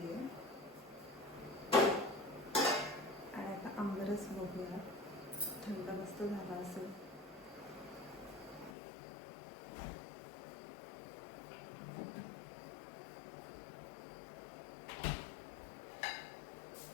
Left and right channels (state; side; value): drops out; right; at 8.7 s